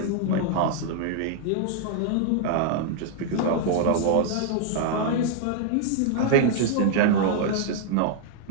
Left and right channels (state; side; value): different; both; correlation -0.01